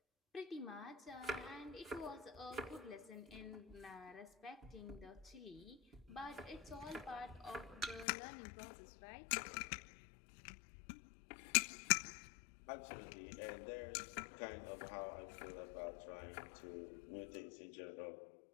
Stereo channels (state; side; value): drops out; right; at 8.1 s